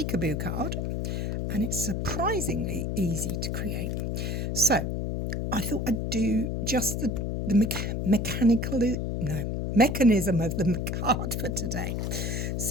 card and it's surprisingly easy to create. So I thought I'd do just the mechanism of the card for today.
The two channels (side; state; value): left; noise; hum, 1 dB below the sound